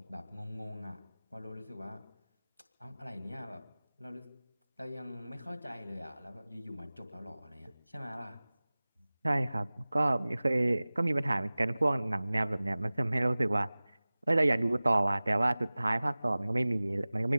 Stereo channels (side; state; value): both; inverted; correlation -0.98